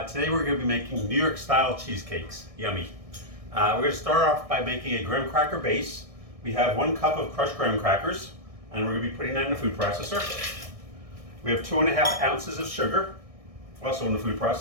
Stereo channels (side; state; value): left; late; 1.6 ms